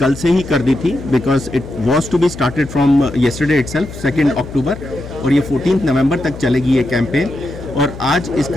से ही कर दी थी, because it was to be started from yesterday itself 2 October, और ये 14 नवंबर तक चलेगी ये कैंपेन। और आज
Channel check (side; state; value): left; noise; hum, 13 dB below the sound